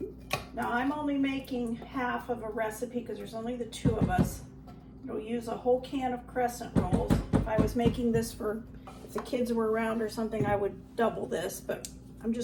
now I'm only making half of a recipe because there's only the 2 of us. It'll use a whole can of Crescent Rolls. If I was making this for, if the kids were around or something, I would double this, but I'm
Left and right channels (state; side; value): identical; both; correlation 1.00